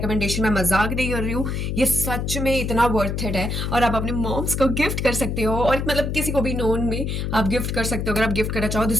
मैं मजाक नहीं कर रही हूँ, ये सच में इतना वर्थ इट है. और आप अपने मॉम्स को गिफ्ट कर सकते हो और मतलब किसी को भी नोन में आप गिफ्ट कर सकते हो अगर आप गिफ्ट करना चाहो.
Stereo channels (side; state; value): left; noise; hum, 2 dB below the sound